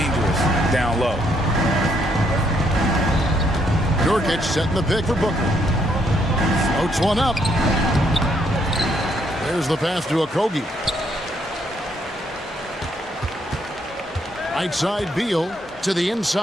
down low. Nurkic setting the pick for Booker. Floats one up. There's the pass to Okogie. Right side, Beal to the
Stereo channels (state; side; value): normal; both; correlation 0.72